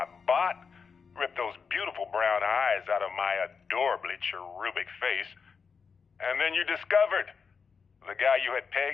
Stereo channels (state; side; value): quieter; right; 5.7 dB